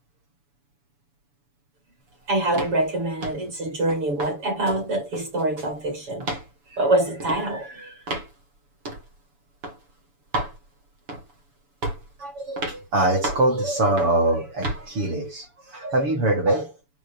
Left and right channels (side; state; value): left; late; 7.0 ms